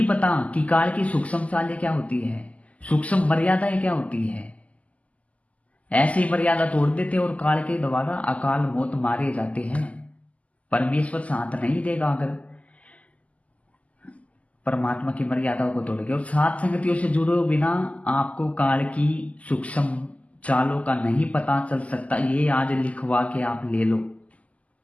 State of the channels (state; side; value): late; right; 0.069 ms